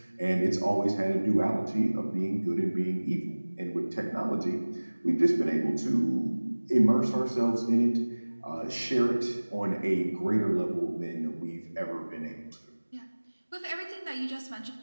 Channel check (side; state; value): both; inverted; correlation -1.00